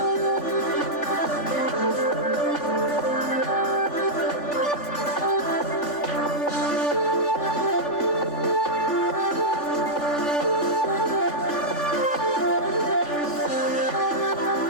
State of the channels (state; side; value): late; right; 3.4 ms